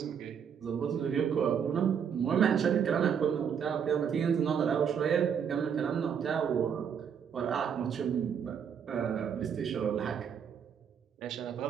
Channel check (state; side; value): quieter; left; 7.6 dB